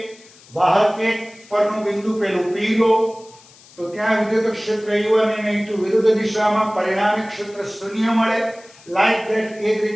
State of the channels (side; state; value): left; noise; hiss, 25 dB below the sound